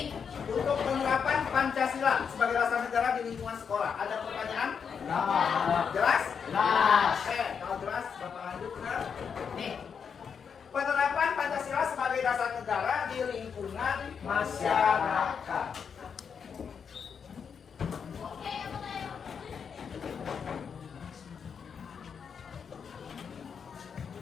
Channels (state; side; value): quieter; right; 6.6 dB